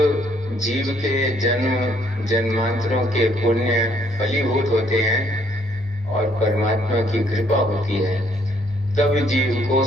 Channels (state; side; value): normal; both; correlation 0.67